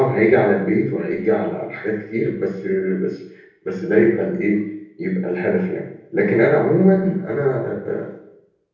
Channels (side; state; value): both; identical; correlation 1.00